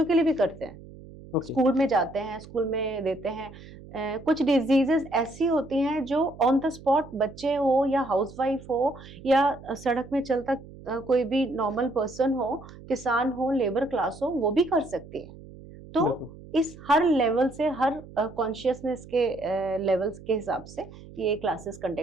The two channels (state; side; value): noise; right; hum, 18 dB below the sound